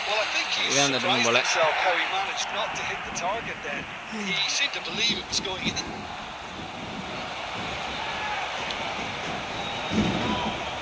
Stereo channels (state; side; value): identical; both; correlation 1.00